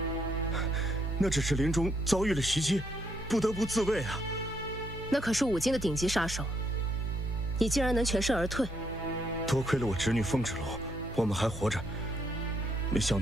那只是林中遭遇了袭击，不得不自卫啊。那可是五经的顶级杀手，你竟然能全身而退？多亏了我侄女凤芷楼，我们还活着。没想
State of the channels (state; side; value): normal; both; correlation 0.73